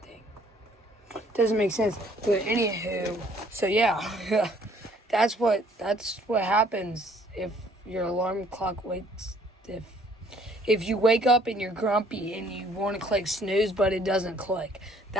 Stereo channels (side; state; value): both; normal; correlation 0.60